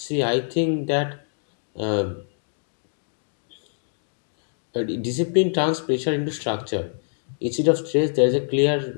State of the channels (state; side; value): silent; right; digital silence